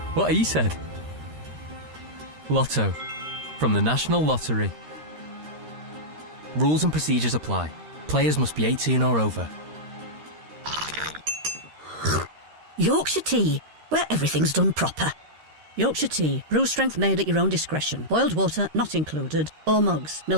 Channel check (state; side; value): late; left; 13 ms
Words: what he said. Lotto from the National Lottery. Rules and procedures apply. Players must be 18 or over. Yorkshire tea, where everything's done proper. Yorkshire tea, brew strength made at your own discretion. Boiled water not included. Or mugs,